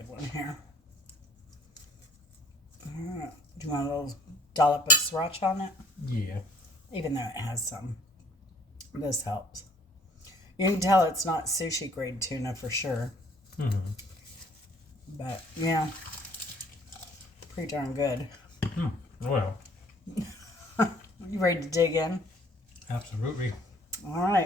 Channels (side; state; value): both; normal; correlation 0.58